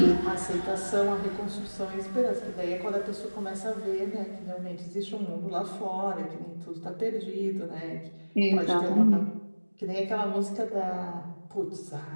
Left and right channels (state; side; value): inverted; both; correlation -1.00